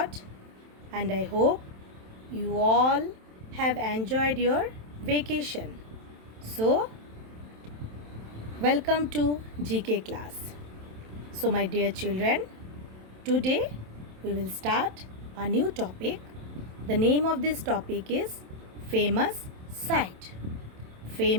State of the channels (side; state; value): left; late; 27 ms